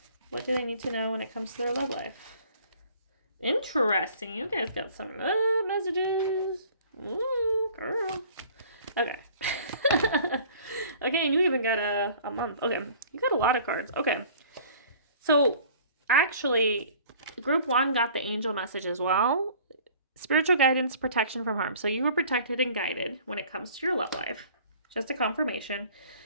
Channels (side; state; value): both; inverted; correlation -0.51